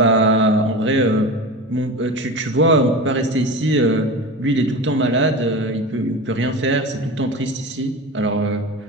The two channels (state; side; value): normal; both; correlation 0.28